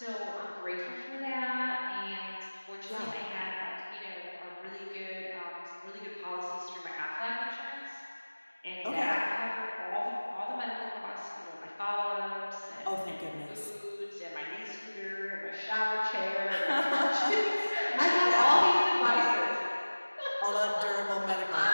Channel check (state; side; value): inverted; both; correlation -1.00